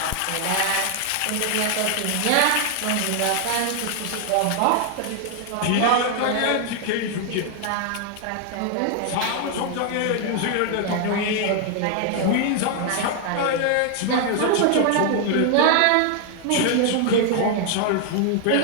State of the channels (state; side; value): different; both; correlation 0.00